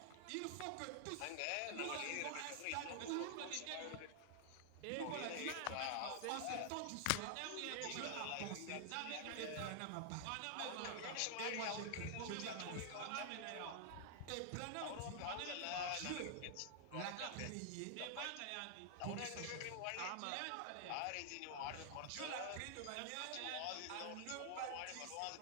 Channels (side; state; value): both; different; correlation 0.00